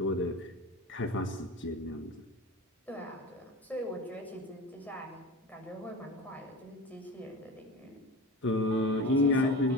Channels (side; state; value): both; normal; correlation 0.30